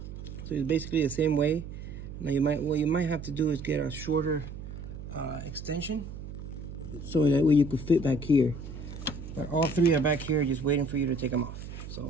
So it's basically the same way. Now what you might have to do is get a shorter extension so that way you could fit back here. But all three are back here just waiting for you to take them off.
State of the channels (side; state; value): right; noise; hum, 10 dB below the sound